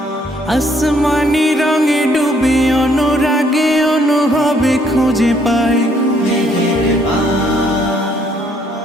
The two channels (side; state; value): both; normal; correlation 0.67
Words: আসমানি রঙে ডুবে অনুরাগে অনুভবে খুঁজে পাই